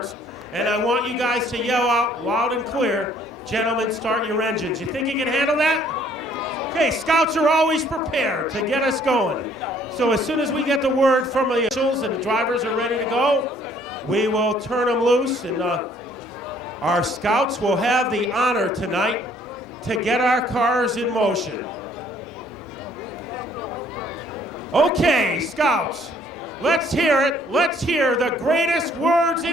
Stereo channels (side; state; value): both; normal; correlation 0.61